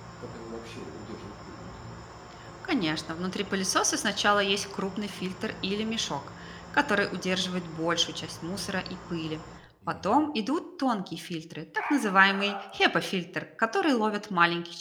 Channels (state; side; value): identical; both; correlation 1.00